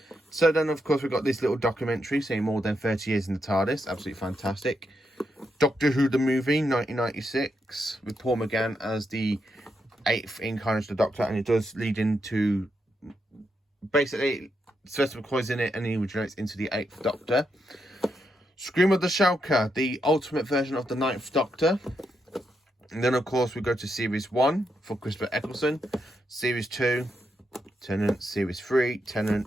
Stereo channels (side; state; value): both; normal; correlation 0.82